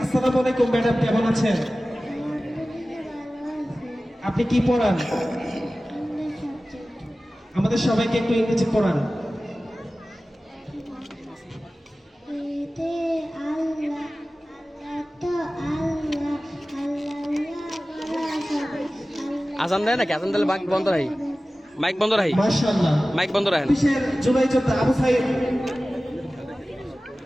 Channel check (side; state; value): both; normal; correlation 0.96